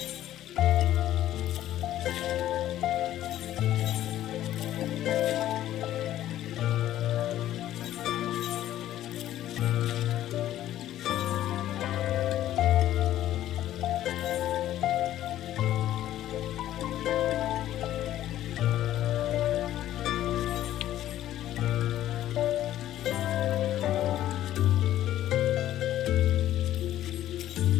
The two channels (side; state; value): right; quieter; 12.9 dB